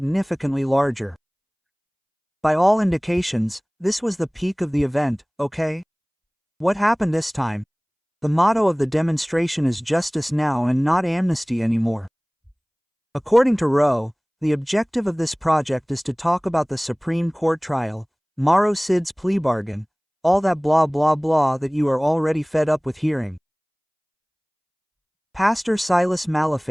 larger. By all indications, this was the peak of the event, okay? What happened this time? The motto of the demonstration is justice now and not amnesty anymore. According to Rowe, the objective of this project is to talk about the Supreme Court trial, Mauro Cid's plea bargain, all that blah blah blah that you are already fed up with hearing. Pastor Silas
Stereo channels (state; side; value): identical; both; correlation 1.00